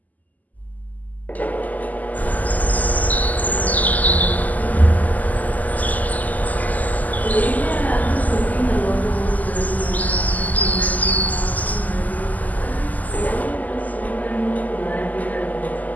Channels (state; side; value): late; right; 0.079 ms